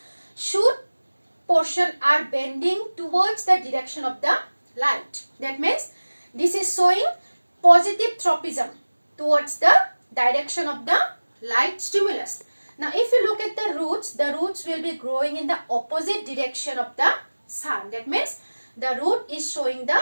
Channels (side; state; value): both; inverted; correlation -1.00